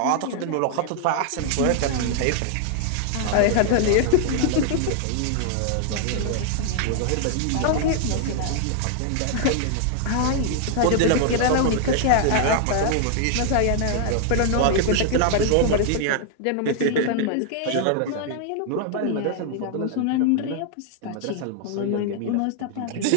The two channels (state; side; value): different; both; correlation 0.00